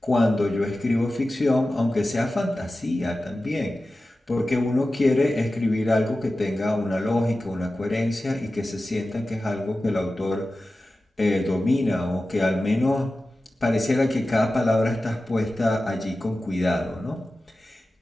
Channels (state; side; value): normal; both; correlation 0.94